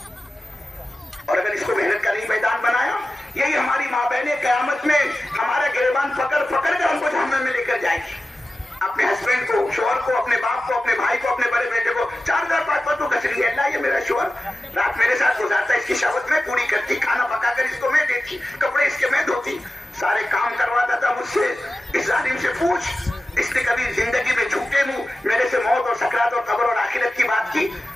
और अगर इसको मेहनत का नहीं मैदान बनाया, यही हमारी माँ बहनें कयामत में हमारा गिरबान पकड़ पकड़ कर हमको जहन्नम में लेकर जाएगी। अपने हस्बैंड को, शोहर को, अपने बाप को, अपने भाई को, अपने बड़े बेटे को 4,000-5,000 तो घस रही है, अल्लाह ये मेरा शोहर रात मेरे साथ गुजारता, इसकी शहवत में पूरी करती, खाना पकाकर इसको मैं देती, कपड़े इसके मैं धोती, सारे काम करवाता था मुझसे। इस जालिम से पूछ, इसने कभी जिंदगी में झूठे मुंह मेरे से मौत और सकरात और कब्र और आखिरत की बात की?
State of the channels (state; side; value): normal; both; correlation 0.94